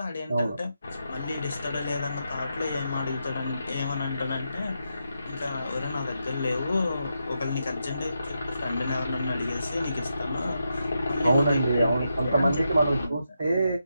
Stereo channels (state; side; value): inverted; both; correlation -0.85